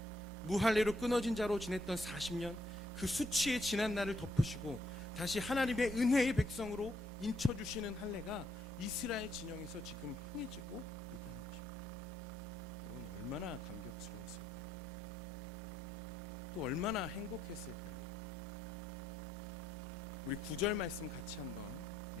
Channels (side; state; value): both; normal; correlation 0.75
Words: 무할례로 끊어진 자로 지냈던 40년, 그 수치의 지난 날을 덮으시고 다시 하나님의 은혜의 백성으로 인쳐주시는 할례가 이스라엘 진영에서 지금 행해지고 있다는 것입니다. 여러분, 얼마나 감격스러웠을까요? 또 얼마나 행복했을까요? 우리 9절 말씀 같이 한번